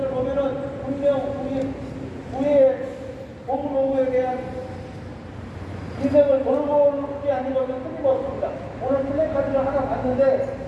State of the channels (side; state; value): both; identical; correlation 1.00